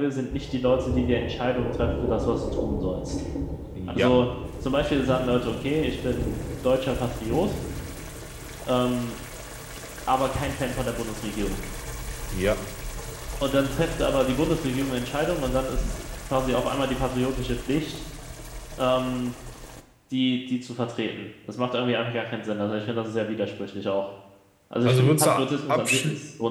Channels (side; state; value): both; identical; correlation 1.00